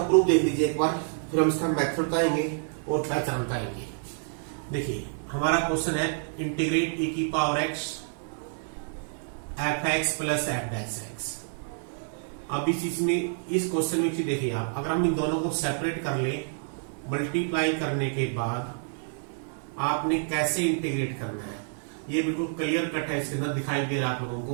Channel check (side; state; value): left; silent; digital silence